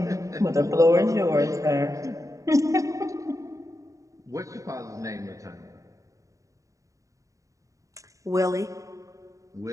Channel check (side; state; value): left; late; 0.16 ms